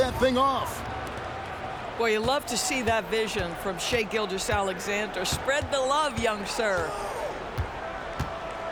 thing off. Boy, you love to see that vision from Shai Gilgeous-Alexander. Spread the love, young sir.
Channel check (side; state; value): both; identical; correlation 1.00